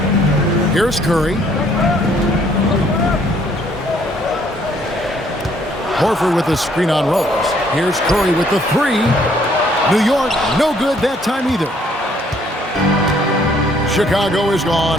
Here's Curry. Horford with a screen on Rose. Here's Curry with the 3. New York, no good that time either. Chicago is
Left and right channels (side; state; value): both; normal; correlation 0.64